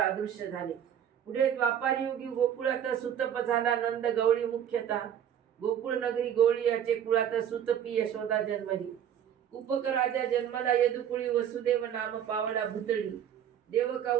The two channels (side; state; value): left; quieter; 9.4 dB